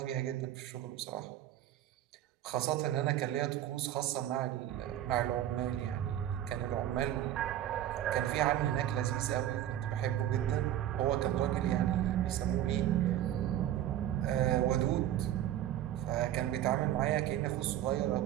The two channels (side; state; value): left; quieter; 12.0 dB